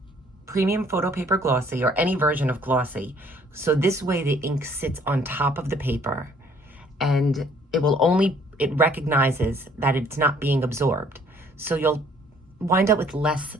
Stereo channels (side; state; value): both; normal; correlation 0.60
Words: premium photo paper glossy, or any version of glossy. So this way the ink sits on top of the paper and it recognizes that it's not being absorbed. So you'll wind up with less